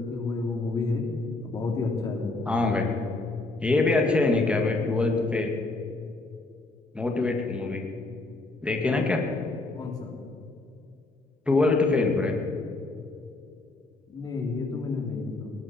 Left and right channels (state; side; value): quieter; right; 3.1 dB